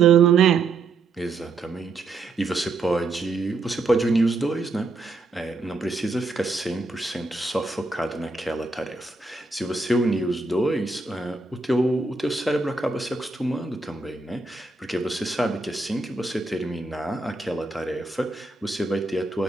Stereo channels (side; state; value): left; quieter; 3.6 dB